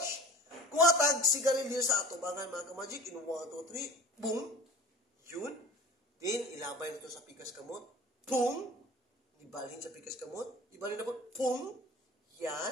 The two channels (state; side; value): normal; both; correlation 0.40